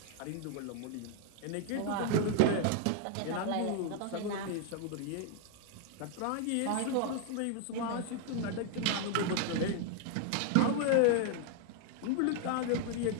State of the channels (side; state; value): both; different; correlation 0.00